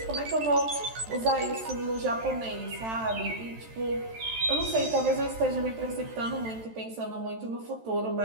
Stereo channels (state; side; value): late; left; 13 ms